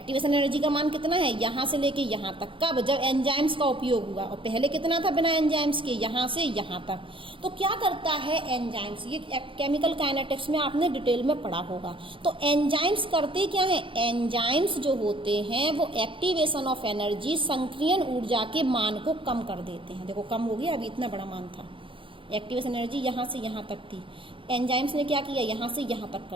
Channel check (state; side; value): late; left; 0.25 ms